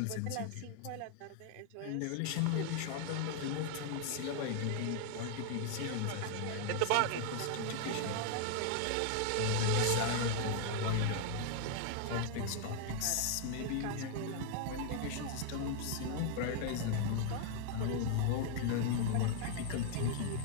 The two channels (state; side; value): different; both; correlation 0.00